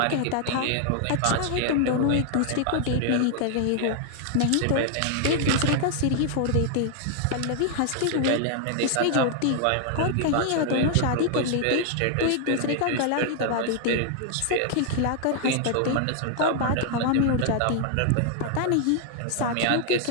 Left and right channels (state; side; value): different; both; correlation 0.00